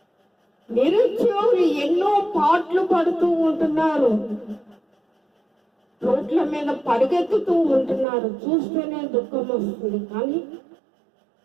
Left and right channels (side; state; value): left; drops out; at 8.1 s